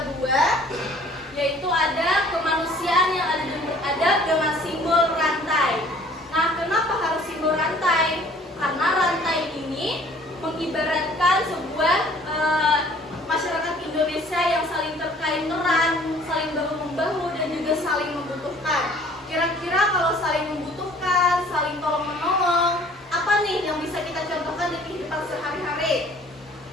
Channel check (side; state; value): both; normal; correlation 0.54